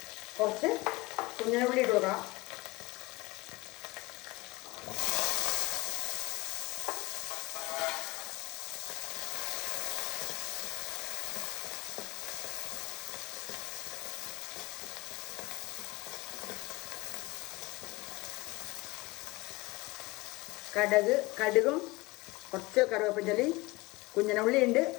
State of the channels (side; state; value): right; quieter; 22.6 dB